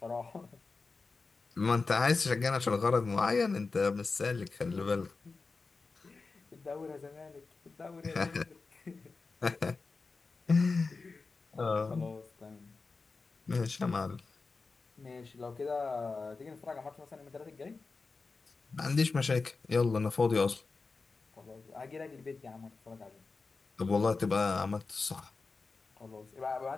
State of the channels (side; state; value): right; quieter; 4.1 dB